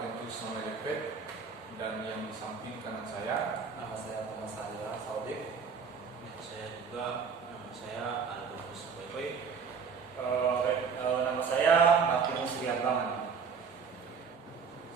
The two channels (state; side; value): quieter; left; 6.0 dB